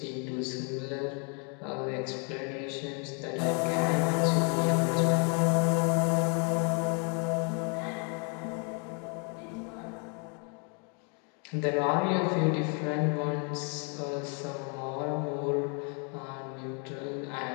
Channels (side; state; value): right; quieter; 37.6 dB